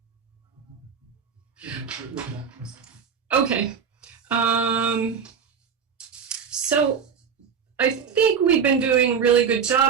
Okay. So I think we've been doing a really good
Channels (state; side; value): quieter; left; 6.9 dB